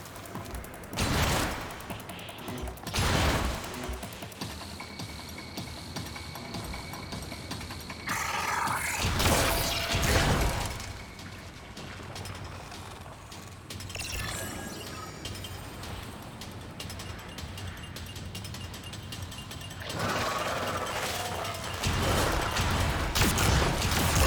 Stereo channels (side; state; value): both; identical; correlation 1.00